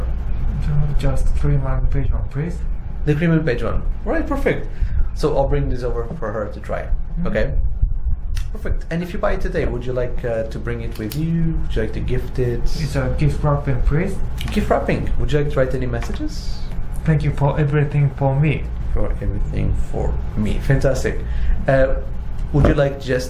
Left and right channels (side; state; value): both; identical; correlation 1.00